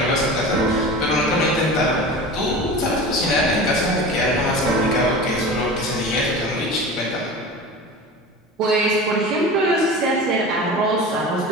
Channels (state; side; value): normal; both; correlation 0.33